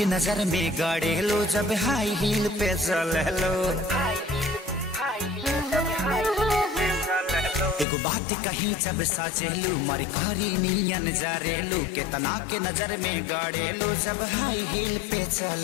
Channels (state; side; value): drops out; right; at 7.9 s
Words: नजर में गड़ेलू जब हाई हील पे चललो। एगो बात कही जब साचेलू मर करी नियन जा रहलू केतना के नजर में गड़ेलू जब हाई हील पे